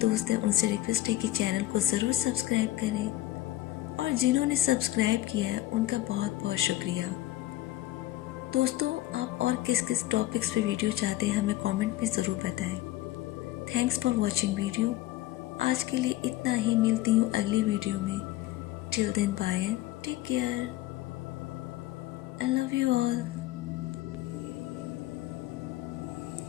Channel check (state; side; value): quieter; right; 15.7 dB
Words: दोस्त हैं उनसे रिक्वेस्ट है कि चैनल को ज़रूर सब्सक्राइब करें और जिन्होंने सब्सक्राइब किया है उनका बहुत बहुत शुक्रिया। दोस्तों, आप और किस किस टॉपिक्स पे वीडियो चाहते हैं हमें कमेंट में ज़रूर बताएं। Thanks for watching video. आज के लिए इतना ही, मिलती हूँ अगली वीडियो में। Till then bye and take care. I love you all.